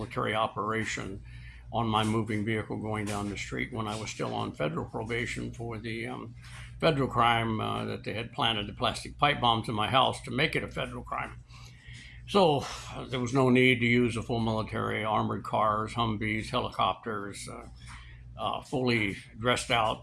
operation on my moving vehicle going down the street when I was still on federal probation for the federal crime that they had planted the plastic pipe bombs in my house to make it a federal crime. So there was no need to use a full military, armored cars, Humvees, helicopters, fully dressed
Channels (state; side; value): identical; both; correlation 1.00